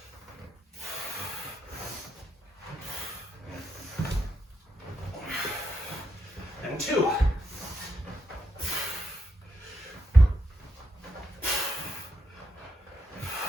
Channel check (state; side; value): normal; both; correlation 0.81